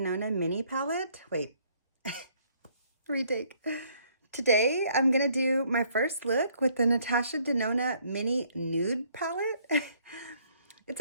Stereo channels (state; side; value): inverted; both; correlation -0.64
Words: Mini palette. Wait, retake. Today I'm going to do my first look with the Natasha Denona Mini Nude palette.